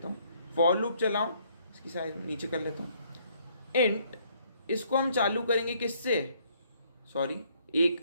हूं। फॉर लूप चलाऊं, इसकी साइज नीचे कर लेता हूं। इंट, इसको हम चालू करेंगे किससे, सॉरी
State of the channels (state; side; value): inverted; both; correlation -0.66